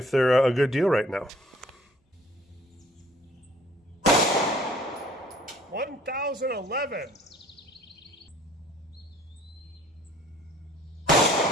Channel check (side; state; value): both; normal; correlation 0.55